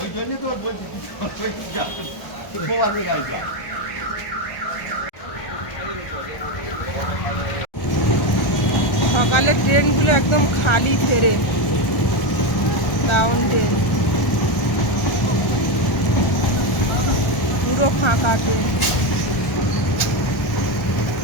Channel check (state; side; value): late; right; 1.4 ms